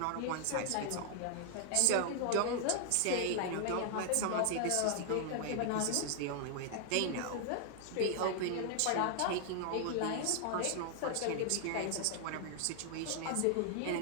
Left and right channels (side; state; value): both; different; correlation 0.00